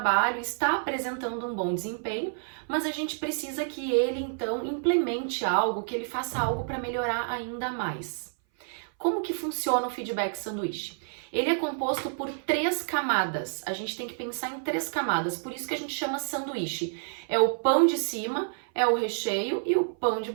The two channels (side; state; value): left; silent; 58 dB below the other